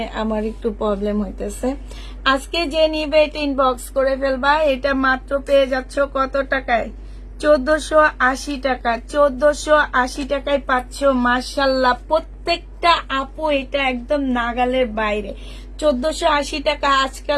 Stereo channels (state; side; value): identical; both; correlation 1.00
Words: আমার একটু প্রবলেম হইতেছে। আজকে যে নিবে এটা ইনবক্স করে ফেলবা। এটা মাত্র পেয়ে যাচ্ছ কত টাকায়? 1480 টাকা। 1480 টাকায় পাচ্ছ। মাশাল্লাহ, প্রত্যেকটা আপু এটা একদম নাগালের বাইরে। 1480 টাকা